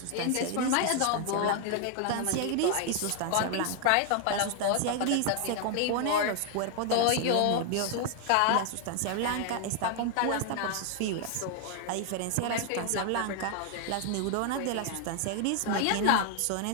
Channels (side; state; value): both; different; correlation 0.00